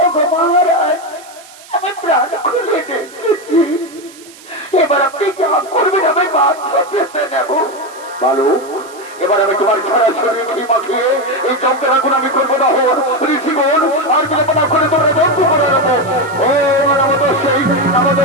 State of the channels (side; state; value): right; noise; hiss, 21 dB below the sound